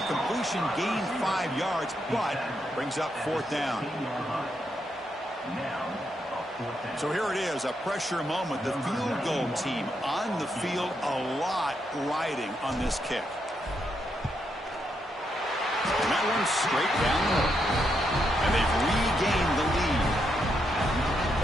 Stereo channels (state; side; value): normal; both; correlation 0.80